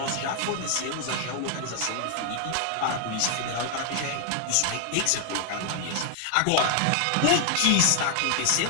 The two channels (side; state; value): both; different; correlation 0.00